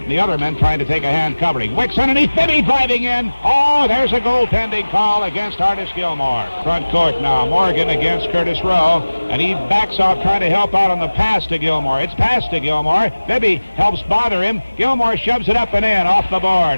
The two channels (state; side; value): inverted; both; correlation -1.00